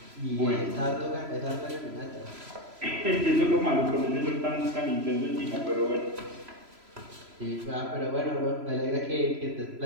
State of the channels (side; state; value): left; late; 3.0 ms